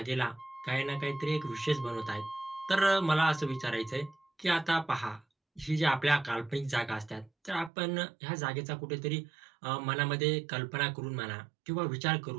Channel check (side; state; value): left; drops out; at 7.7 s